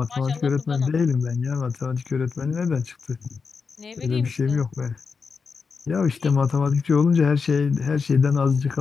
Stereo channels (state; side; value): quieter; right; 5.2 dB